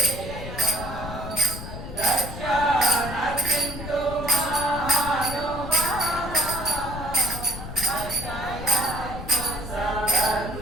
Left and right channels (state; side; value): noise; left; rumble, 9 dB below the sound